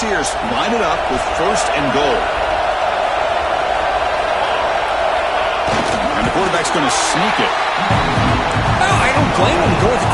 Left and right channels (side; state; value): both; identical; correlation 1.00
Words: line it up with 1st and goal. And the quarterback's going to sneak it. Well, I don't blame him. Go with the